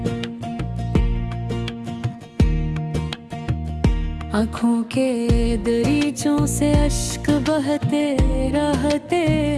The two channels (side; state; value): both; identical; correlation 1.00